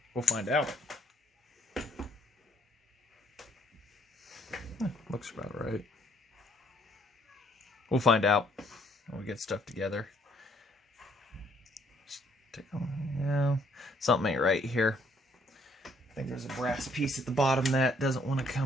We'll find out. Looks about right. We'll find out when we get stuff together. Yeah, something ain't right here. I think there's a brass piece at the bottom that doesn't want to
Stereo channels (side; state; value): both; normal; correlation 0.66